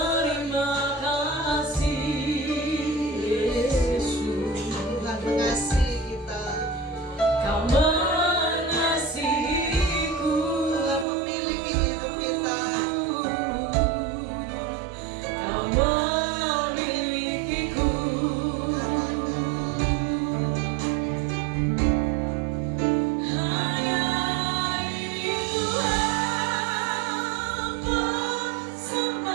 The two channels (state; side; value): drops out; left; at 11.1 s